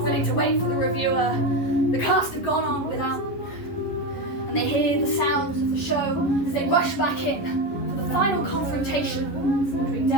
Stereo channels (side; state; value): right; late; 11 ms